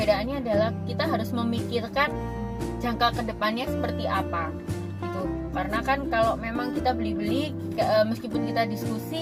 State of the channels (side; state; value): both; identical; correlation 1.00